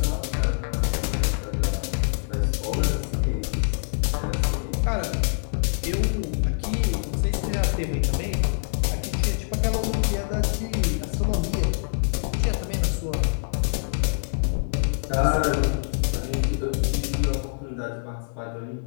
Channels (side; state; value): right; silent; digital silence